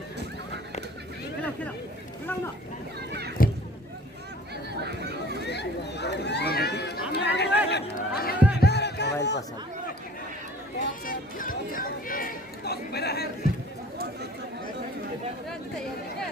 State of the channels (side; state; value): both; normal; correlation 0.49